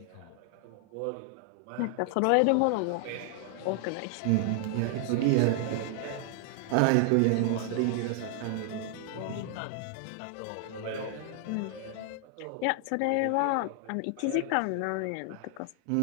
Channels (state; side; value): different; both; correlation 0.00